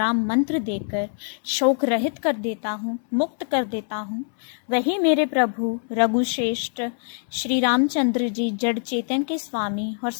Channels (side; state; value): right; silent; digital silence